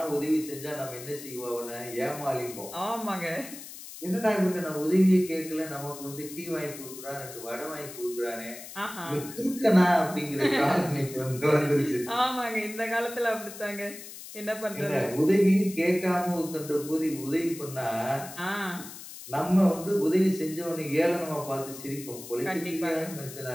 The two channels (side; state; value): left; noise; hiss, 13 dB below the sound